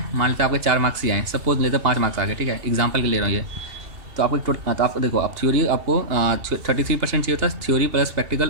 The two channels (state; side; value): late; left; 2.7 ms